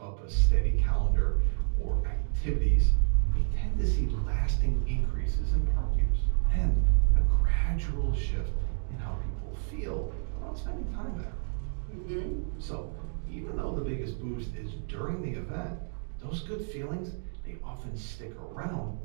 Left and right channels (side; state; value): left; silent; digital silence